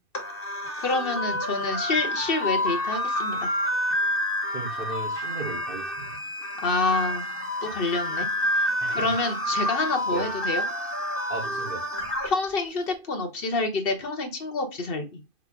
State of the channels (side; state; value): right; late; 2.6 ms